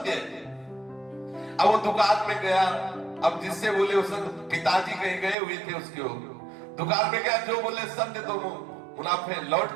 अब वो दुकान में गया, अब जिससे बोले उस पिताजी कहीं गए हुए थे उसके, दुकान में गया, जो बोले सत्य तो मुनाफे, लौट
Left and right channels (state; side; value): drops out; left; at 5.4 s